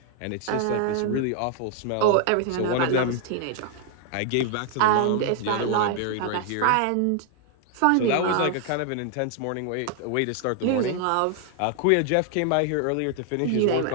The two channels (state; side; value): different; both; correlation 0.00